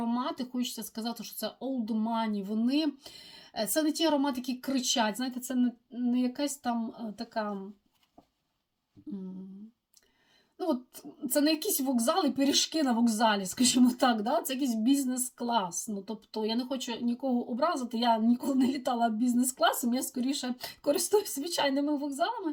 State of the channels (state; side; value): identical; both; correlation 1.00